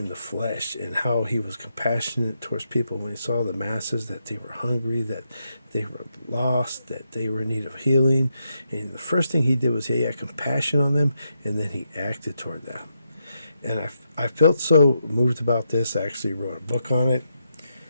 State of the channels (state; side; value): inverted; both; correlation -0.82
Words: the flesh, and how he was compassionate towards people when he saw the masses, that they were hungry, that they were lost, that they were in need of healing. And the first thing he did was he had compassion on them, and then he acted toward them. And I felt so moved about this, I actually wrote a book on it